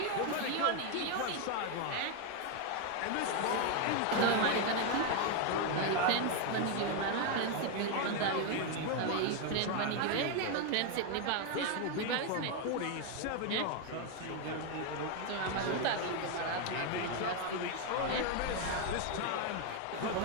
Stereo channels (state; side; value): different; both; correlation 0.01